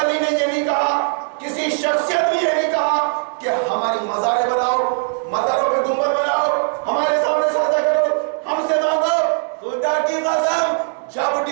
نے یہ نہیں کہا، کسی شخصیت نے یہ نہیں کہا کہ ہماری مزاریں بناؤ، مزاروں پہ گنبد بناؤ، ہمارے سامنے سجدہ کرو، ہم سے مانگو۔ خدا کی قسم جب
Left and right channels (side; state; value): left; silent; 56 dB below the other